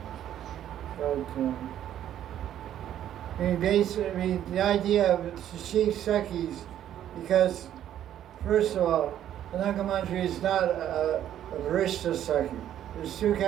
But the idea of the chief Sakhis, because first of all, Ananga Manjari is not a Varishta Sakhi. There's two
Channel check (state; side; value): quieter; left; 11.1 dB